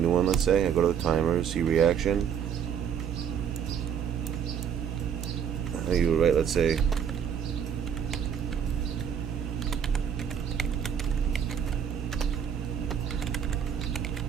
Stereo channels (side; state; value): left; quieter; 8.2 dB